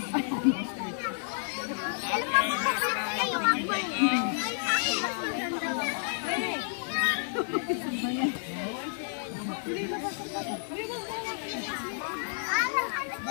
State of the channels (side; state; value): right; silent; digital silence